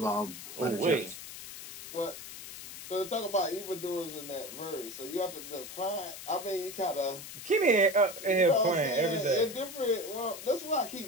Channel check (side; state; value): left; noise; hiss, 12 dB below the sound